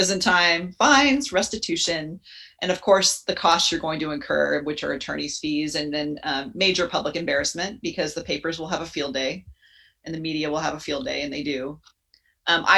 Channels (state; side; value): identical; both; correlation 1.00